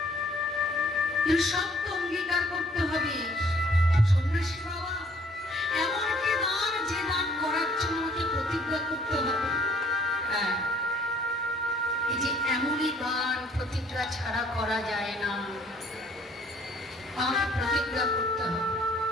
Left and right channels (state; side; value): normal; both; correlation 0.60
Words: শব্দ অঙ্গীকার করতে হবে। সন্ন্যাসী বাবা, এমন কি দান যে দান করার জন্য আমাকে প্রতিজ্ঞা করতে হবে? হ্যাঁ, এই যে এমনই দান প্রতিজ্ঞা ছাড়া করা যায় না, আমাকে প্রতিজ্ঞা করতে হবে।